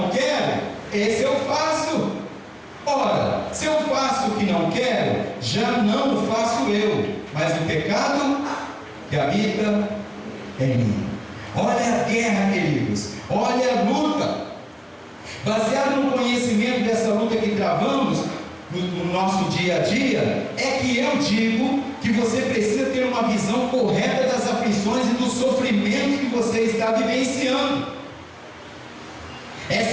quero, esse eu faço. Ora, se eu faço o que não quero, já não o faço eu, mas o pecado que habita em mim. Olha a guerra, queridos, olha a luta. Baseado no conhecimento dessa luta que travamos no nosso dia a dia, é que eu digo que você precisa ter uma visão correta das aflições e dos sofrimentos que você está vivenciando.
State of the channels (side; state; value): both; identical; correlation 1.00